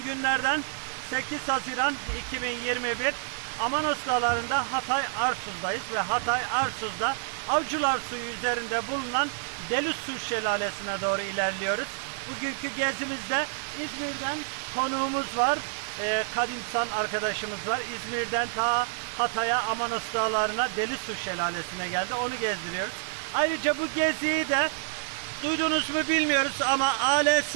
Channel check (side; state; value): left; silent; digital silence